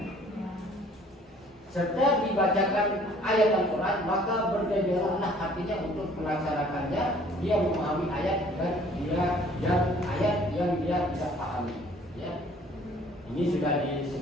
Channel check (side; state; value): both; normal; correlation 0.55